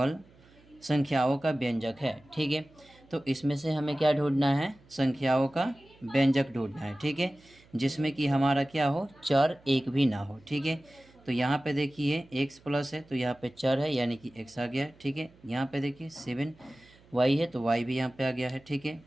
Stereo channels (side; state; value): right; noise; hum, 28 dB below the sound